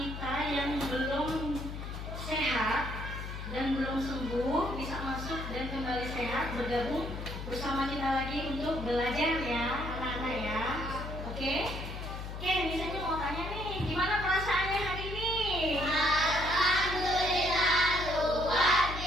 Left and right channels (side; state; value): left; noise; hum, 7 dB below the sound